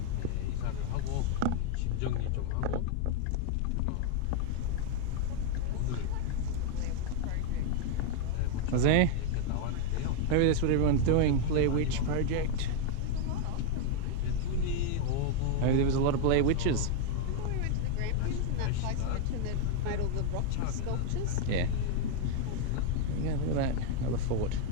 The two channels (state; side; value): different; both; correlation 0.00